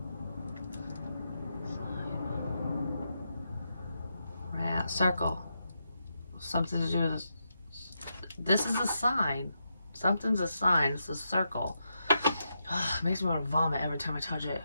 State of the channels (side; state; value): both; inverted; correlation -0.84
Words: Circle. Something to do with this. This is a sign. Something's a sign. It's a circle. It makes me want to vomit every time I touch it.